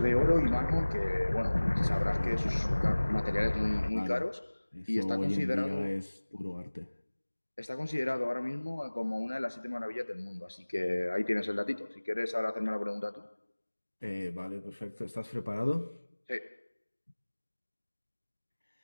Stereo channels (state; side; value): inverted; both; correlation -1.00